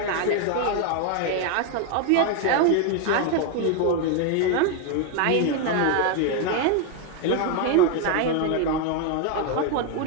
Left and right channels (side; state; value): both; different; correlation 0.01